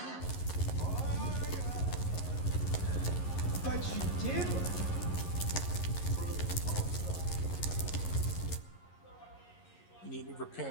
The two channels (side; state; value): right; late; 11 ms